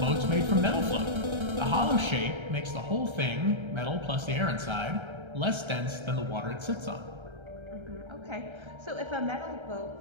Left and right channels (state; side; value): late; left; 1.3 ms